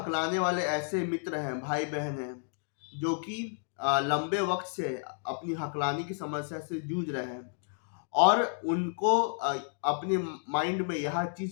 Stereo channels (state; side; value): silent; right; digital silence